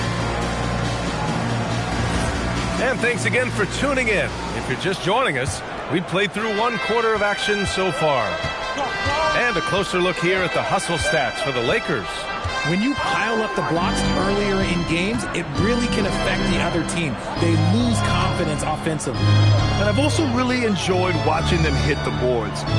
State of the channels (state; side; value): identical; both; correlation 1.00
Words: And thanks again for tuning in. If you're just joining us, we've played through 1 quarter of action so far. And a closer look here at the hustle stats for the Lakers. When you pile up the blocks earlier in games, it really can affect the other team. They lose confidence offensively. And I've also really enjoyed watching them hit the boards,